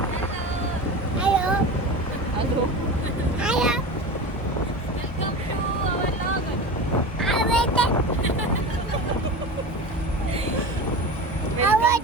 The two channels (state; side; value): normal; both; correlation 0.29